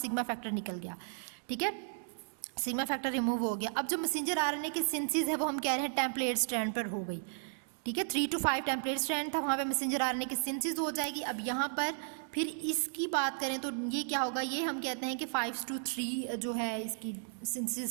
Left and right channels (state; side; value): silent; left; digital silence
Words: फैक्टर निकल गया। ठीक है, सिग्मा फैक्टर रिमूव हो गया। अब जो मैसेंजर आरएनए की सिंथेसिस है वो हम कह रहे हैं टेम्पलेट स्ट्रैंड पर हो गई। ठीक है, 3 to 5 टेम्पलेट स्ट्रैंड था, वहाँ पे मैसेंजर आरएनए की सिंथेसिस हो जाएगी। अब यहाँ पर फिर इसकी बात करें तो ये क्या होगा, ये हम कहते हैं कि 5 to 3 जो है इसकी